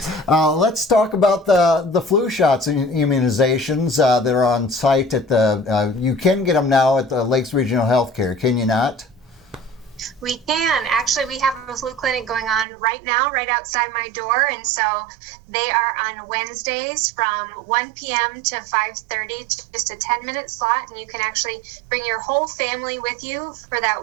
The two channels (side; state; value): left; drops out; at 12.7 s